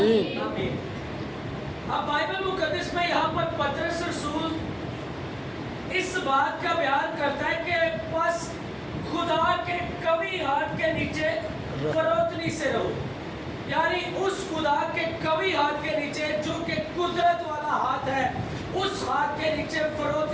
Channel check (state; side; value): identical; both; correlation 1.00